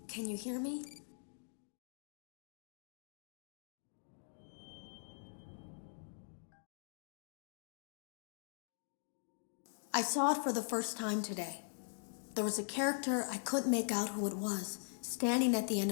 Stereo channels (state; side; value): silent; right; digital silence